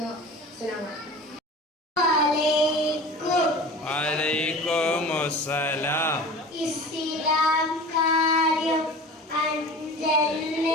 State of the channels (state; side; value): normal; both; correlation 0.37